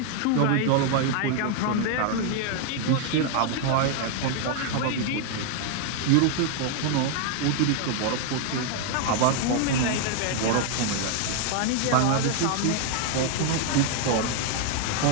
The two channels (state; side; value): different; both; correlation 0.00